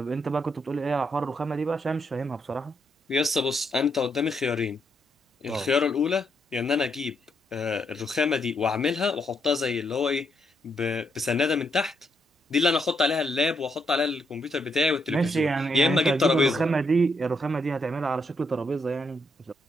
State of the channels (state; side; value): normal; both; correlation 0.77